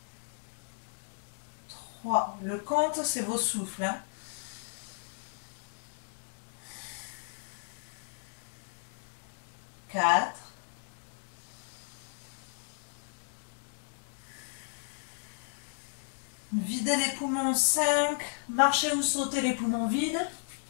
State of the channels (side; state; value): right; silent; digital silence